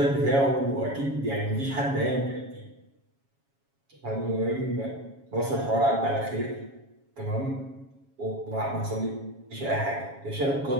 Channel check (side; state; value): left; late; 7.3 ms